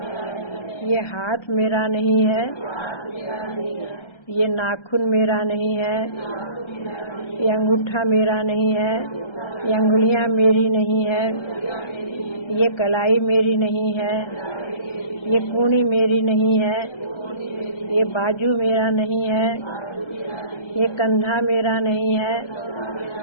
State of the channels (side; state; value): right; late; 1.4 ms